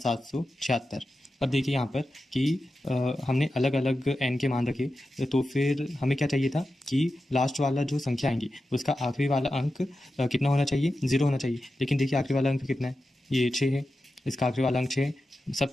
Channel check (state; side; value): normal; both; correlation 0.91